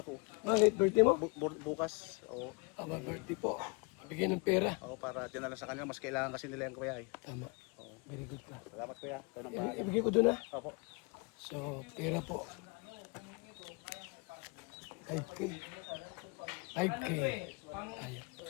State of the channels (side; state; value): right; quieter; 31.2 dB